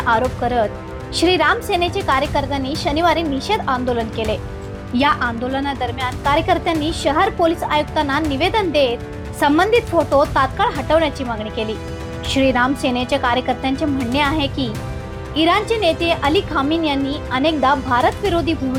आरोप करत श्रीराम सेनेचे कार्यकर्त्यांनी शनिवारी निषेध आंदोलन केले। या आंदोलनादरम्यान कार्यकर्त्यांनी शहर पोलीस आयुक्तांना निवेदन देत संबंधित फोटो तात्काळ हटवण्याची मागणी केली। श्रीराम सेनेच्या कार्यकर्त्यांचे म्हणणे आहे की इराणचे नेते अली खामेनी यांनी अनेकदा भारत विरोधी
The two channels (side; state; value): both; identical; correlation 1.00